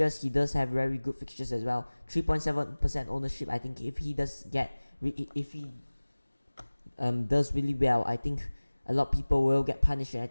he does have very good fixtures as well. 3.7% ownership. I think if he does does really well, I think a lot of people will get punished, and I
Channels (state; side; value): inverted; both; correlation -1.00